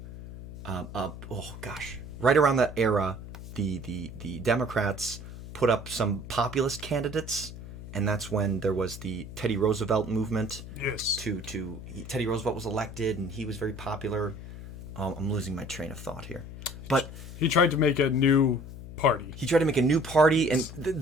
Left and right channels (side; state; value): left; noise; hum, 12 dB below the sound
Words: right around that era, the Democrats put up some populist candidates, and that's when there was the Teddy Roosevelt movement. Yes. Teddy Roosevelt was elected, and he was very popular. I'm losing my train of thought here, but he tried to make a new party. And